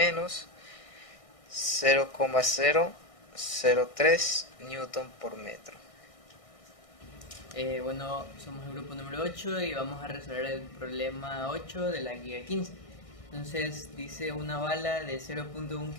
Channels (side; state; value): right; late; 1.6 ms